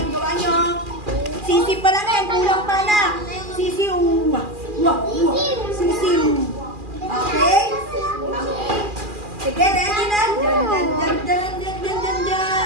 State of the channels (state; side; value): late; left; 2.4 ms